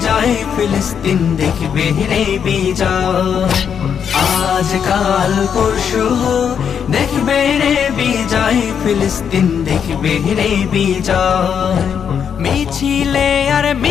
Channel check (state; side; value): quieter; right; 7.6 dB